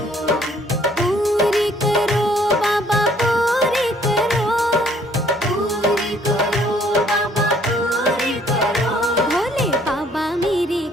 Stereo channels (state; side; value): normal; both; correlation 0.61